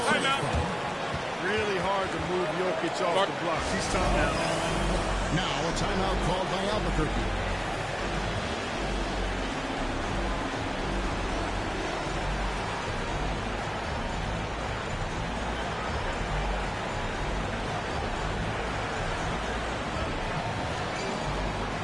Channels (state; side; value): identical; both; correlation 1.00